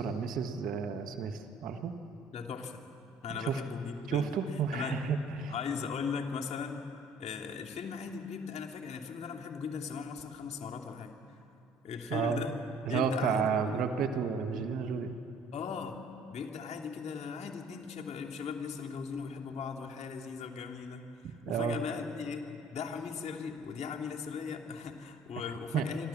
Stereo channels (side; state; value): both; normal; correlation 0.54